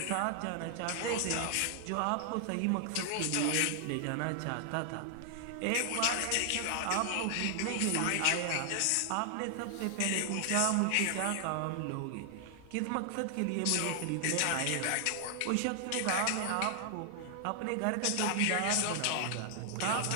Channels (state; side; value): different; both; correlation 0.00